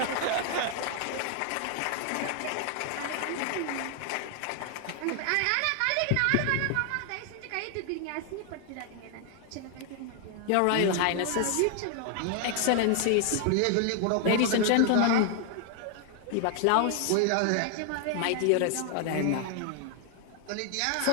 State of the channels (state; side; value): different; both; correlation 0.00